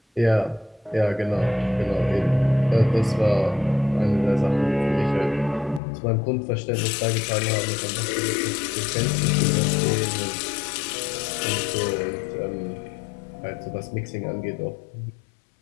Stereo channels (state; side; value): drops out; right; at 5.8 s